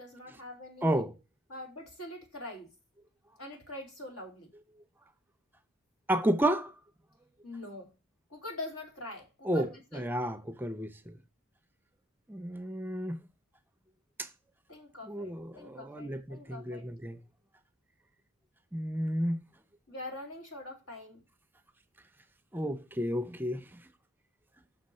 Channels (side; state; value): both; normal; correlation 0.73